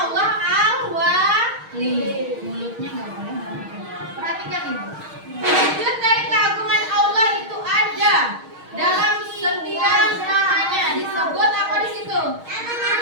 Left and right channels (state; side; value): late; left; 6.4 ms